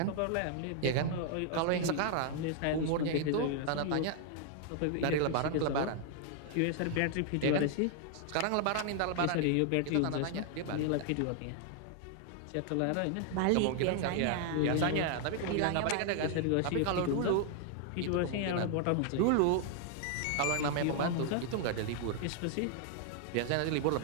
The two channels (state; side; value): different; both; correlation 0.00